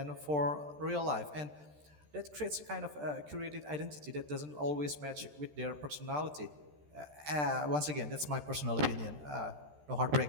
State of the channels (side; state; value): left; late; 13 ms